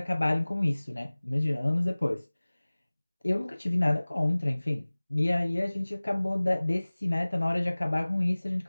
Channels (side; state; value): both; inverted; correlation -1.00